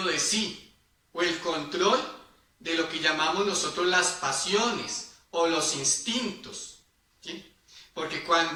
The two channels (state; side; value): identical; both; correlation 1.00